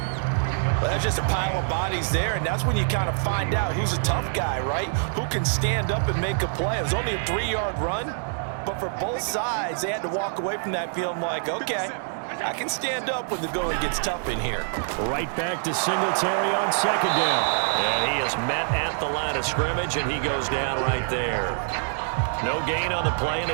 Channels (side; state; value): left; silent; 61 dB below the other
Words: Well, that's just a pile of bodies there, and that's when you kind of find out who's a tough guy, right? Who can stand up and make a play. It was only a 3-yard run, but for both sides, they had to walk away from that feeling like, okay, I can stand up when the going gets tough in here. Right back to Singletary on 2nd down. And he is met at the line of scrimmage, and he goes down right there. No gain on the play, and